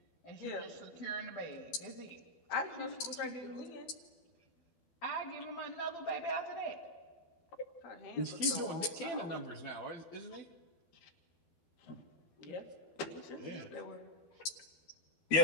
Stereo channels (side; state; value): right; late; 12 ms